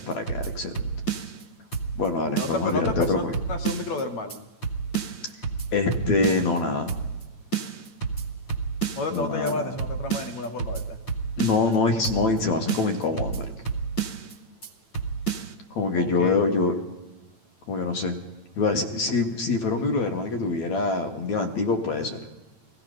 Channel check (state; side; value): late; right; 8.9 ms